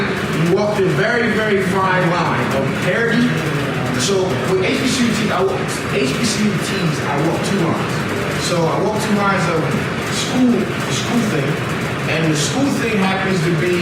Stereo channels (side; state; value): both; identical; correlation 1.00